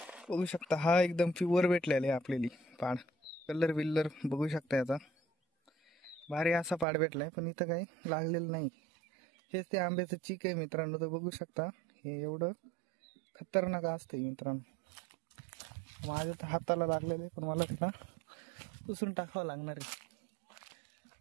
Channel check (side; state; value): left; drops out; at 6.9 s